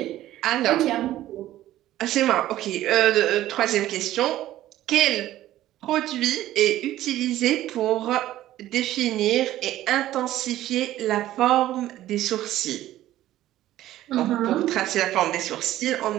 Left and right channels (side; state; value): left; quieter; 14.1 dB